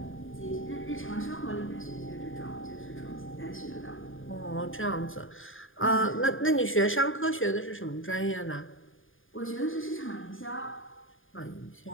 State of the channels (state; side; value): late; right; 0.59 ms